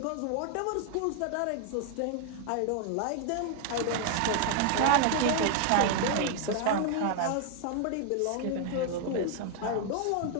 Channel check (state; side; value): different; both; correlation 0.00